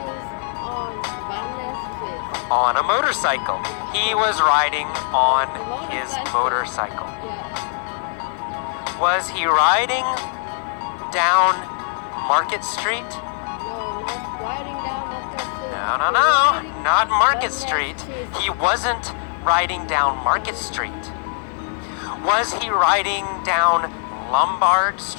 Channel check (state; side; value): silent; right; 64 dB below the other